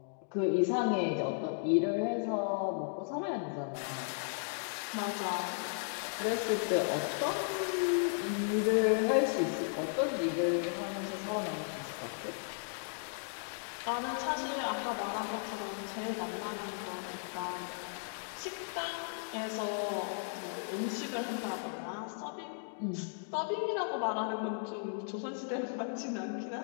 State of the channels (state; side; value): silent; right; digital silence